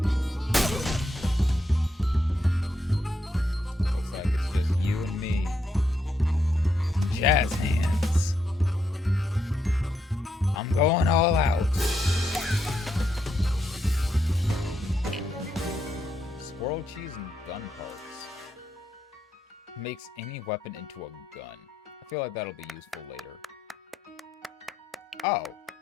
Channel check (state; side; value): normal; both; correlation 0.80